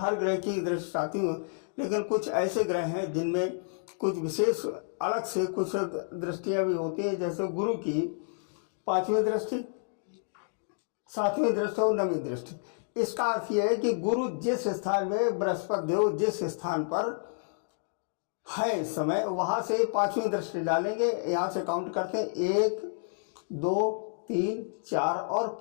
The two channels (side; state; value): right; silent; digital silence